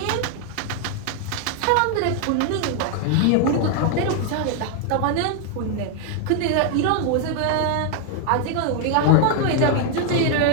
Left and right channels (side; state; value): both; different; correlation 0.00